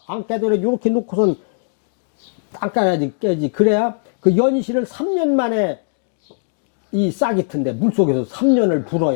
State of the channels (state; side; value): silent; right; digital silence